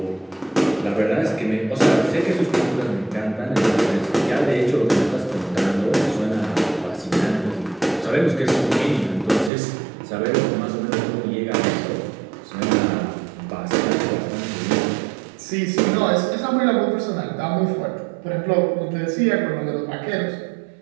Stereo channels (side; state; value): left; drops out; at 9.5 s